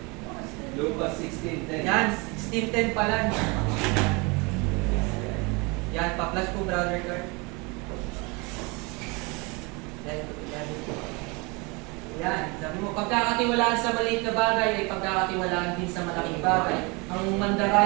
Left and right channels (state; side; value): quieter; left; 28.2 dB